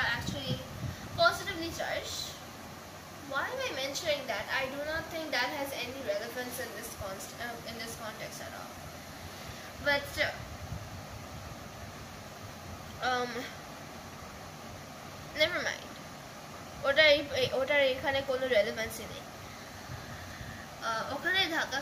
actually positively charge. Why am I mentioning that? I do not think that has any relevance in this context at all. But never mind. ওটার এখানে কোনো রেলেভেন্সই নেই। ওখানে ধাক্কা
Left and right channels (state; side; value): identical; both; correlation 1.00